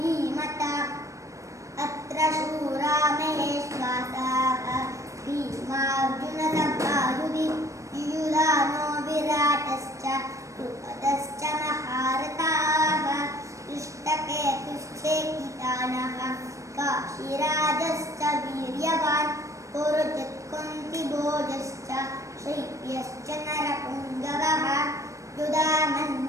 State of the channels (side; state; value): left; late; 0.15 ms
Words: अत्र शूरा महेश्वासाः भीमार्जुनसभायुधि युयुधानो विराटश्च द्रुपदश्च महारथाः दृष्टकेतुश्चेकितानः काशीराजश्च वीर्यवान् पुरुजित् कुन्तिभोजश्च शैब्यश्च नरपुङ्गवः